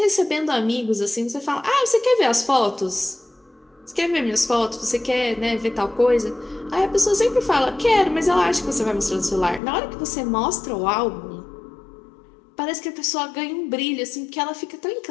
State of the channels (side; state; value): right; drops out; at 9.6 s